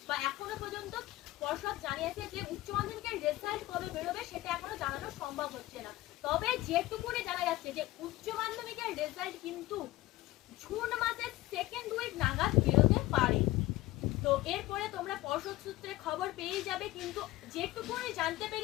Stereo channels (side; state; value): right; quieter; 17.9 dB